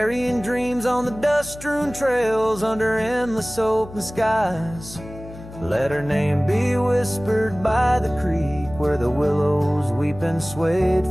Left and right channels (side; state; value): left; noise; hum, 16 dB below the sound